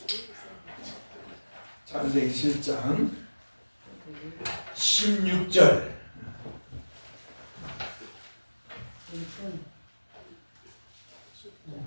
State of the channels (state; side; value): inverted; both; correlation -1.00